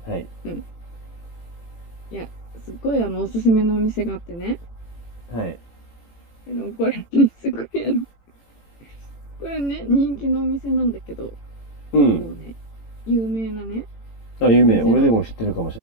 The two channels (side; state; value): right; late; 18 ms